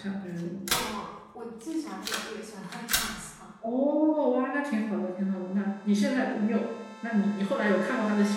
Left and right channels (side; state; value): both; identical; correlation 1.00